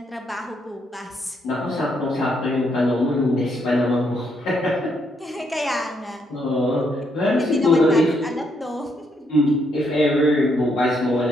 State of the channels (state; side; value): normal; both; correlation 0.75